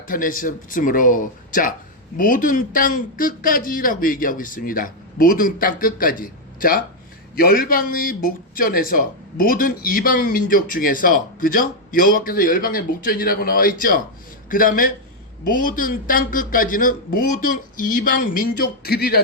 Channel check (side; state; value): both; normal; correlation -0.01